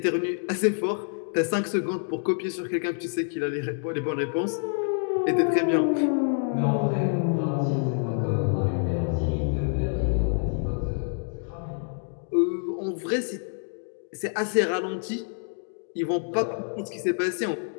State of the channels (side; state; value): right; silent; 60 dB below the other